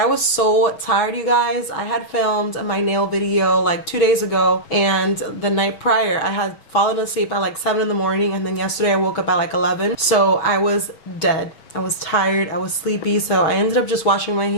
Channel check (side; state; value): right; late; 6.6 ms